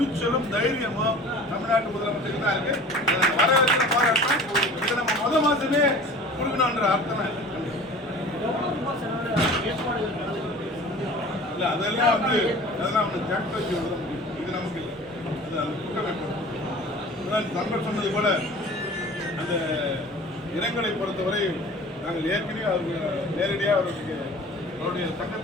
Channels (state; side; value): normal; both; correlation 0.42